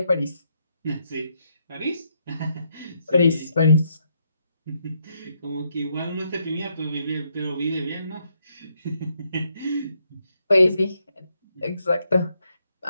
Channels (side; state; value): both; inverted; correlation -0.77